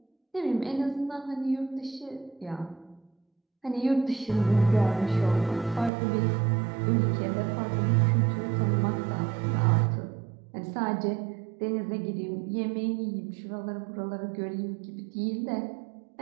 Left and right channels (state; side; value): drops out; left; at 5.9 s